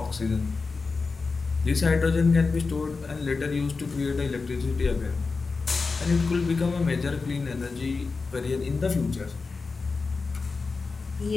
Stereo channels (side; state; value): right; quieter; 4.3 dB